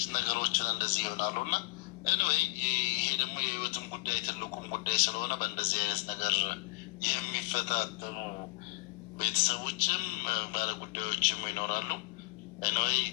ነገሮችን እንደዚህ ይሆናሉ። እና ኤኒዌይ ይሄ ደግሞ የህይወትም ጉዳይ ትልቁም ጉዳይ ስለሆነ በእንደዚህ አይነት ነገር የሚፈታተኑ ቤተሰቦችም ባለጉዳዮችም ይኖራሉ። ኤኒዌይ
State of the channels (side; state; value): right; quieter; 24.7 dB